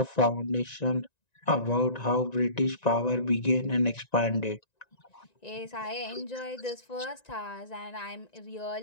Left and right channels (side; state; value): right; late; 1.9 ms